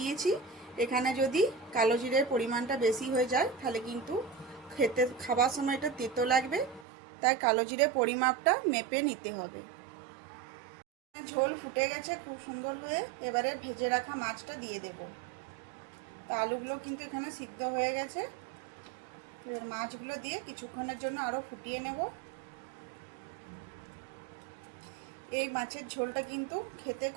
এখানে যদি কালো জিরের পরিমাণটা বেশি হয়ে যায় তাহলে কিন্তু খাবার সময় এটা তেতো লাগবে, তাই কালো জিরে পরিমাপটা মেপে নিতে হবে। ঝোল ফুটে গেছে খুব সুন্দর হয়ে, এবারে ভেজে রাখা মাছটা দিয়ে দেব। তো আলুগুলো কিন্তু এখানে সিদ্ধ হয়ে গেছে। এবার মাছগুলো দিয়ে কিছুক্ষণের জন্য আরও ফুটিয়ে নেব। এই মাছের ঝোলটা কিন্তু খেতে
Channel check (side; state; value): left; drops out; at 6.9 s